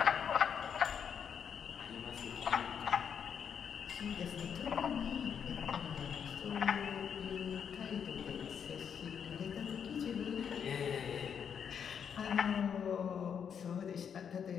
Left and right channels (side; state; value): right; quieter; 7.6 dB